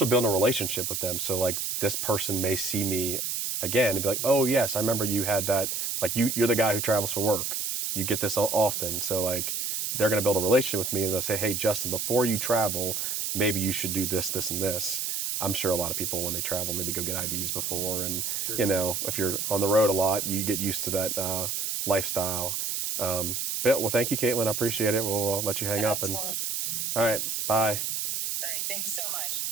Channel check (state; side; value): noise; right; hiss, 1 dB below the sound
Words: building a relationship with them. So this person may see me again and be like, oh yes, I remember you had that. You're the guy who travels for work. You get this often. So they're going to build a relationship with me and they'll say, hey, Justin, before you travel, maybe you should do this, this, and this. I'm sure a lot of people when they travel maybe go get IVs before. And, if you're on the road a lot, you get used to that lifestyle. Well, thank you, Caitlin. I appreciate it. We'll let you hang up. And all right, bye. All right. Thank you so much.